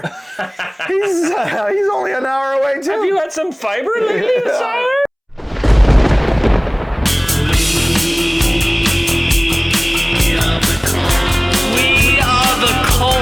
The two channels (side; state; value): both; identical; correlation 1.00